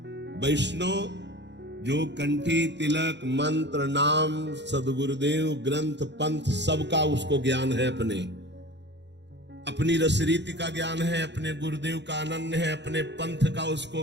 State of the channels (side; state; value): left; late; 0.51 ms